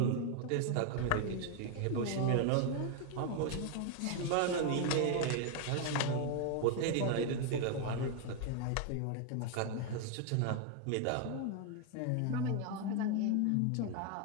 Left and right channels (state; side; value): different; both; correlation 0.01